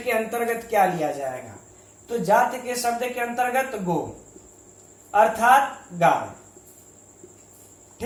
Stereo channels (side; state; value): both; identical; correlation 1.00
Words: अंतर्गत क्या लिया जाएगा, तो जाति के शब्द के अंतर्गत गो अर्थात गाय।